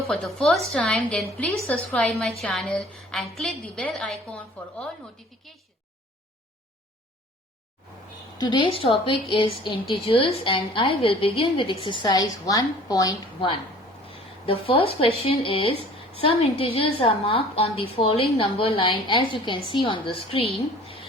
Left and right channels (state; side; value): normal; both; correlation 0.49